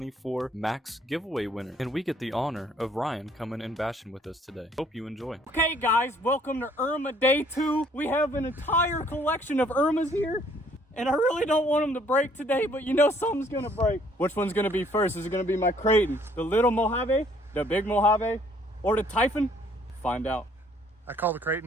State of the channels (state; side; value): normal; both; correlation 0.62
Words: Max giveaway winner, and we get the honor of Ryan coming and bashing with us today. Hope you enjoy. Okay guys, welcome to Errrma Day 2. We have an entire collection of Errrmas here, and I really don't want them to break today, but you know something's gonna break. Which one's gonna be first? Is it gonna be my Kraton, the little Mojave, the big Mojave, or the Typhon? Find out. I call the